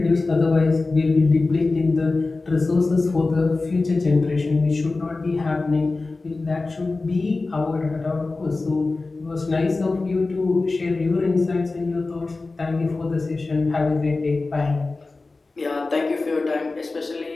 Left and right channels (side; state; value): right; quieter; 3.5 dB